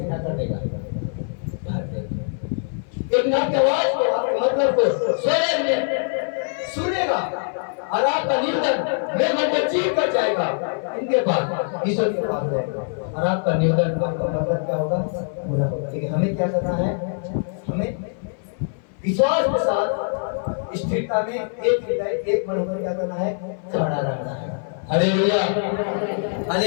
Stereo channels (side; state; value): right; silent; 58 dB below the other